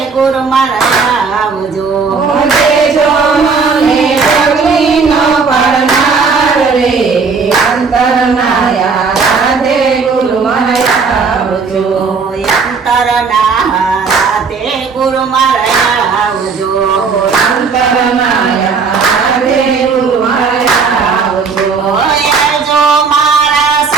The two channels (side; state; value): left; quieter; 5.1 dB